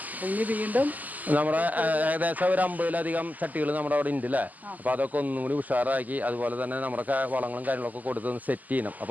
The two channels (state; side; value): late; left; 0.080 ms